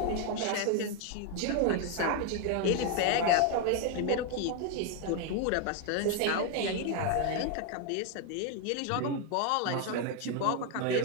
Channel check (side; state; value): both; different; correlation 0.01